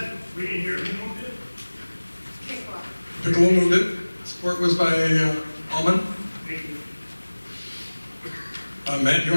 We didn't hear who moved it. Pickle? Piccolo moved it. Support was by Alma. Thank you. Matt, you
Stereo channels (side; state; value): both; inverted; correlation -1.00